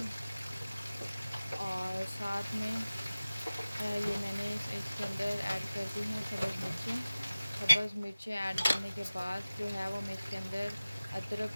और साथ में ये मैंने इसके अंदर ऐड कर दी हैं सब्ज़ मिर्चें ऐड करने के बाद जो है वो मैं इसके अंदर अदरक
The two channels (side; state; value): both; inverted; correlation -0.97